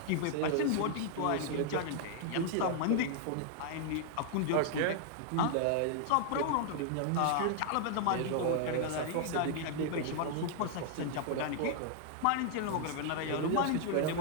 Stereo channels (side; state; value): both; different; correlation 0.00